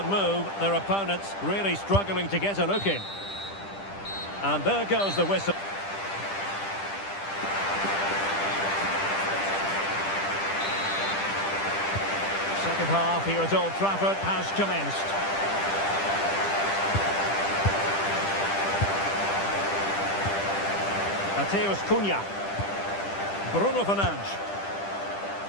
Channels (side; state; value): right; late; 10 ms